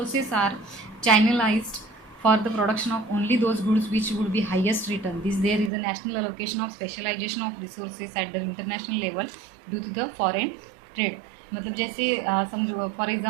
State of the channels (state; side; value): drops out; left; at 5.7 s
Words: are channelized for the production of only those goods which would be highest return. There is a national allocation of specialization of resources at the international level due to the foreign trade. मतलब जैसे समझो for